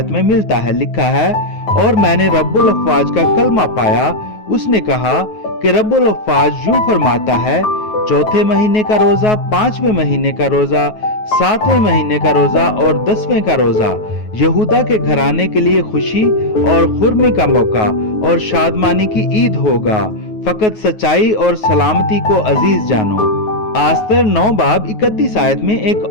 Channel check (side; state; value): right; late; 9.4 ms